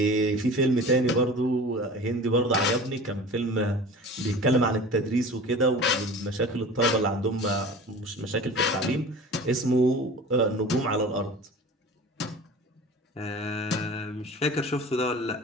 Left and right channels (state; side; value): normal; both; correlation 0.39